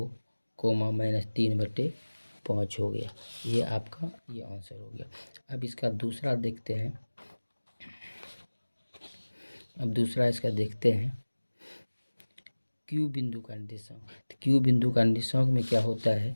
-3/5 हो गया। ये आपका ये आंसर हो गया। अब इसका दूसरा देखते हैं। अब दूसरा इसका देखते हैं क्यू बिंदु का निर्देशांक। तो क्यू बिंदु का निर्देशांक में क्या होता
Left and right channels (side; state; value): both; inverted; correlation -1.00